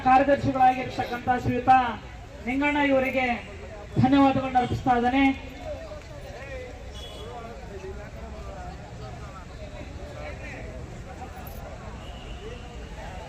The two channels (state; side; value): identical; both; correlation 1.00